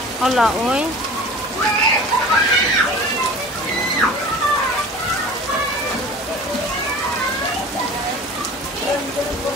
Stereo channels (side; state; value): both; normal; correlation 0.40